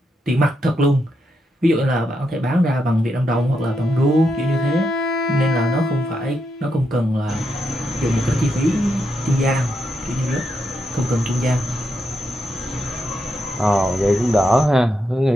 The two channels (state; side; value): normal; both; correlation 0.82